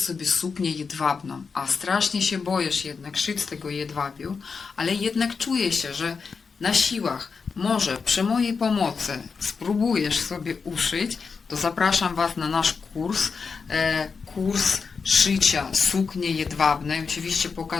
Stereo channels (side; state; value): right; quieter; 5.2 dB